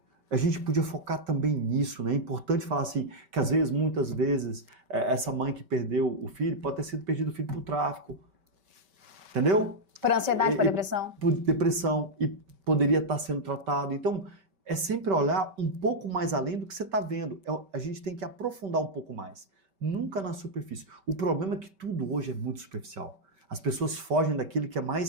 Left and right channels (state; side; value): late; left; 5.2 ms